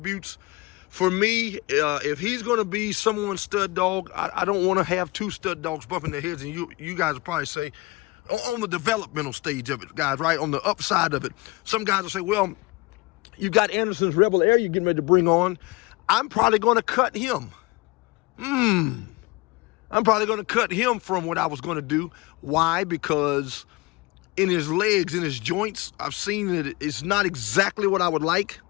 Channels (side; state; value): right; quieter; 23.4 dB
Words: For me, if he's going to be someone's stud dog, I don't want to have two stud dogs bumping their heads. And you guys will probably say, on the developmental stage of it, guys, right? On the upside of it. Some guys will say, well, you got Anderson's Rebel Heir you're getting ready to bring on. I'm probably going to cut him. I'm probably going to cut him from what I was going to do. Why? Because in his legs, in his joints, I've seen that it's not exactly what I would like.